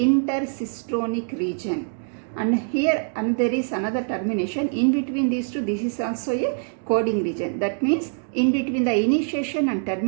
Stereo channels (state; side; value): silent; left; 59 dB below the other